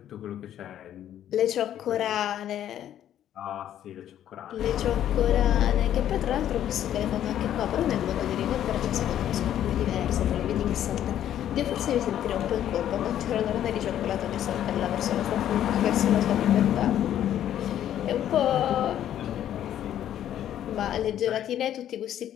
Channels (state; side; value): quieter; right; 11.1 dB